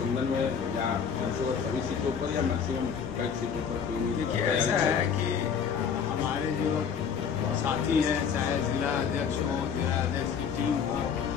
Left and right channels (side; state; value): right; quieter; 7.0 dB